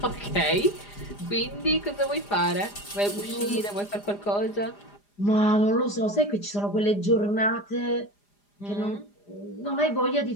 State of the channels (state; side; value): late; right; 4.9 ms